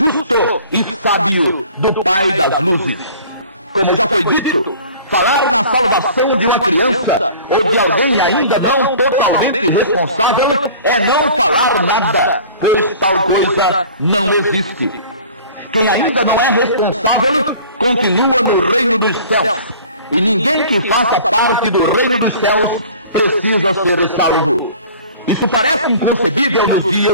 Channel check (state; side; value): inverted; both; correlation -0.45